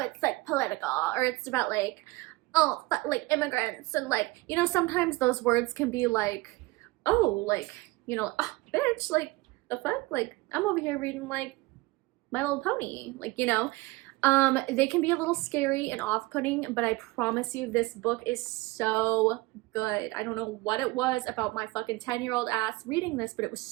it's like political, or it's about like, oh, but like immigrants, and like, you know, sometimes those words can be like, oh, like, you know, oh, bitch, like, the fuck? Like, I'm over here reading like My Little Pony, like, you know. They can be a little scary and off-putting, but I promise you this book is so good. I don't know what it was about my fucking 10-year-old ass reading this, but it was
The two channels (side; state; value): left; quieter; 21.8 dB